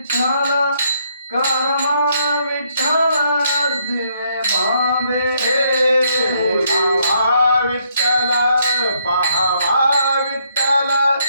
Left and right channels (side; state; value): both; inverted; correlation -0.71